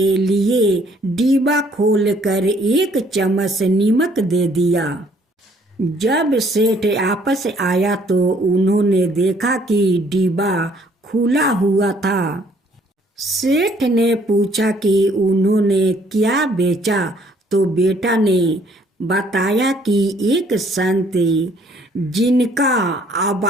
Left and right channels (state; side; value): normal; both; correlation 0.63